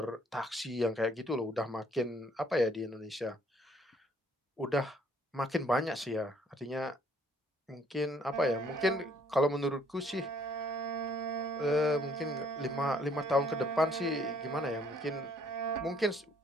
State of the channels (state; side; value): normal; both; correlation 0.63